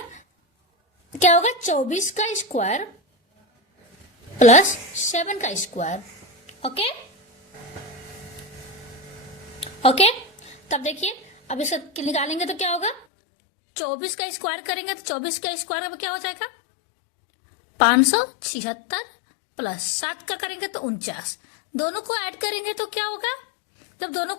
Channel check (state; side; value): drops out; right; at 13.1 s